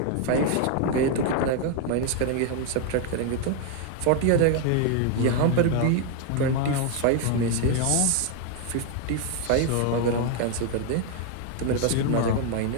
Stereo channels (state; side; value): different; both; correlation 0.01